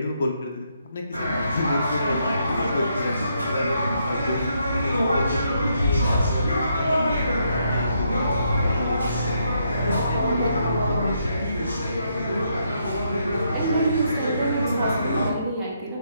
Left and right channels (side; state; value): both; inverted; correlation -0.76